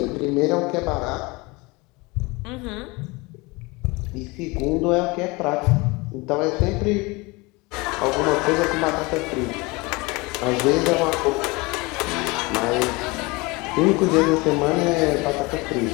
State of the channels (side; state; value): right; quieter; 24.9 dB